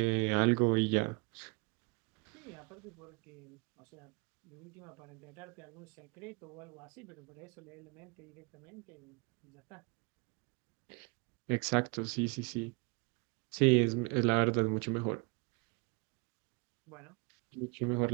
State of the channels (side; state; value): left; quieter; 29.9 dB